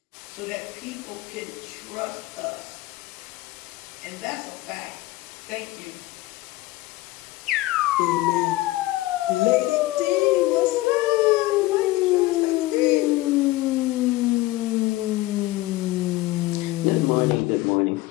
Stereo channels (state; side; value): quieter; right; 18.3 dB